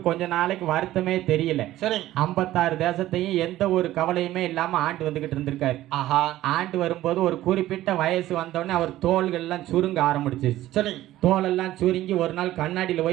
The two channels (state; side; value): quieter; left; 14.8 dB